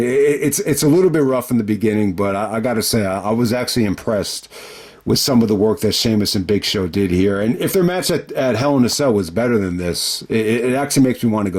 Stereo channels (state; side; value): identical; both; correlation 1.00